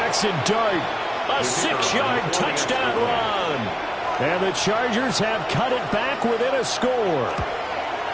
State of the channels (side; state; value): both; identical; correlation 1.00